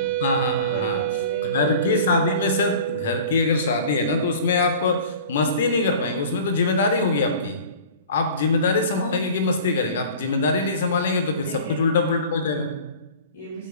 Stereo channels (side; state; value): both; inverted; correlation -0.42